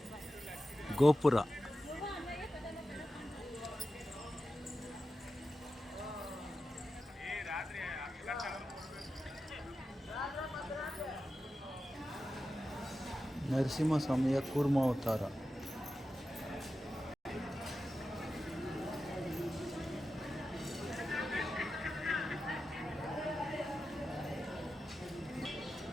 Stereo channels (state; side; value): normal; both; correlation 0.92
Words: ಗೋಪುರ. ನರಸಿಂಹಸ್ವಾಮಿಯ ಕೂರ್ಮಾವತಾರ.